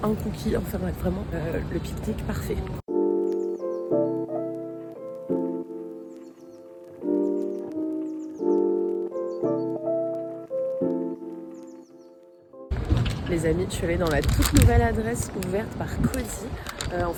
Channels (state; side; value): identical; both; correlation 1.00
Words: un cookie, enfin bref, vraiment le pique-nique parfait. Les amis, je suis allée dans la toute nouvelle adresse ouverte par Cozy. En